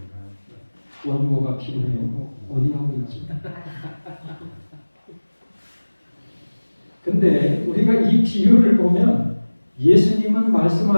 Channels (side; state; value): both; inverted; correlation -1.00